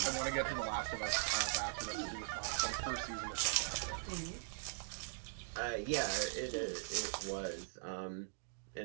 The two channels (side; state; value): left; silent; digital silence